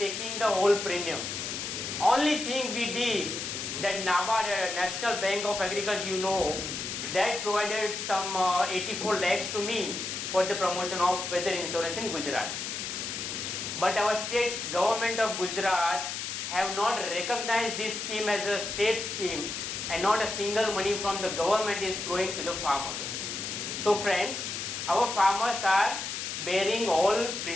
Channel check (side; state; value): left; noise; hiss, 4 dB below the sound